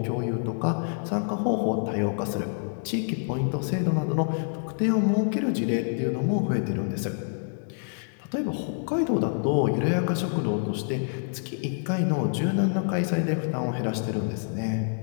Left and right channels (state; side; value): silent; right; digital silence